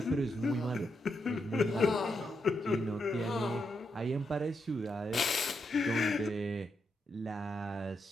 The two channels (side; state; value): both; normal; correlation 0.82